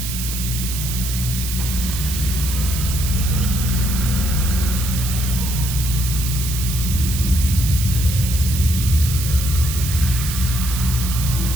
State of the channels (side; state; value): right; noise; hiss, 6 dB below the sound